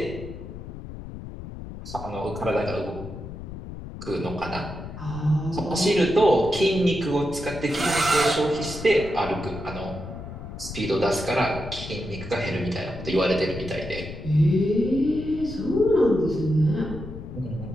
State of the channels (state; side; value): noise; left; rumble, 11 dB below the sound